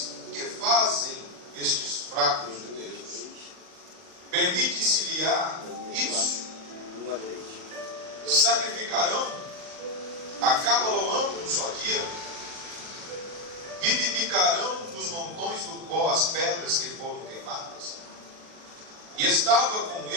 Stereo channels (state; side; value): late; left; 40 ms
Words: que fazem estes fracos judeus? Permite-se-lhe-á isso? Sacrificarão? Acabaloão um só dia? Vivificarão nos montões do pó as pedras que foram queimadas? E estava com